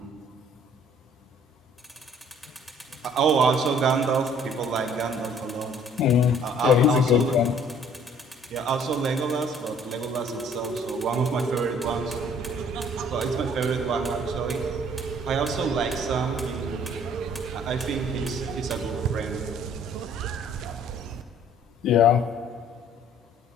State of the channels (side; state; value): both; normal; correlation 0.57